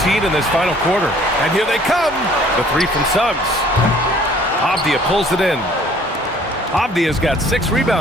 in this final quarter. And here they come. The 3 from Suggs. Avdia pulls it in. Avdia's got 6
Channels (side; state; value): both; normal; correlation 0.56